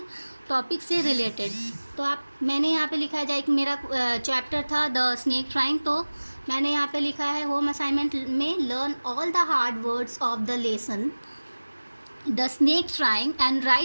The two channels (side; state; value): both; inverted; correlation -1.00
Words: टॉपिक से रिलेटेड. तो मैंने यहाँ पे लिखा है, जैसे मेरा चैप्टर था द स्नेक ट्राइंग, तो मैंने यहाँ पे लिखा है होम असाइनमेंट में learn all the hard words of the lesson the snake trying and